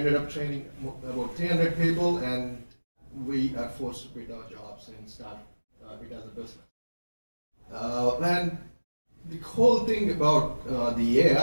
up training about 300 people, and we are forced to quit our jobs and start it as a business. And the whole thing about the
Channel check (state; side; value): inverted; both; correlation -1.00